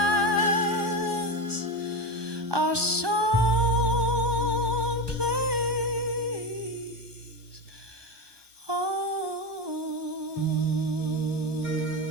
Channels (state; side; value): late; left; 1.2 ms